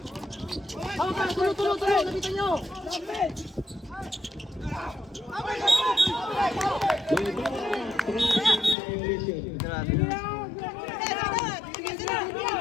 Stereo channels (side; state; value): right; drops out; at 8.8 s